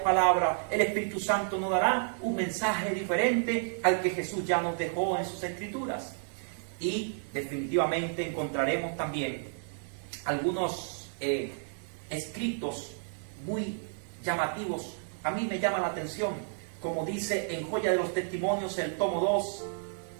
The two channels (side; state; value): left; silent; 57 dB below the other